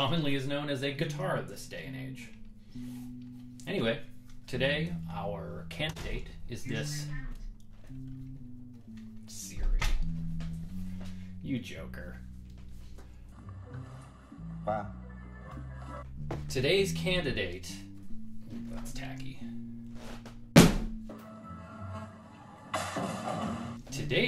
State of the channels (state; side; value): identical; both; correlation 1.00